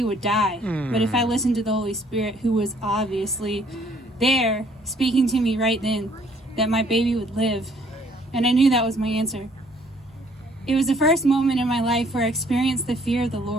would die. But if I listened to the Holy Spirit, who was obviously there speaking to me right then, that my baby would live. And I knew that was my answer. It was the first moment in my life where I experienced the fear of the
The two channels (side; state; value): both; normal; correlation 0.62